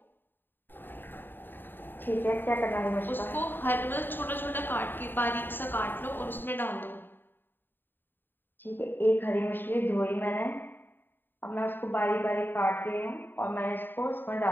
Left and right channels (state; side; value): late; right; 0.095 ms